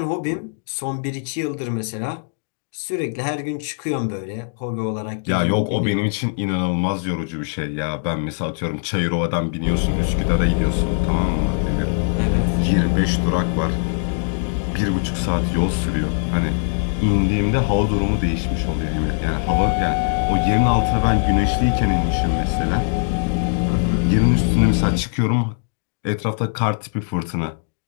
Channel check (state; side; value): silent; right; digital silence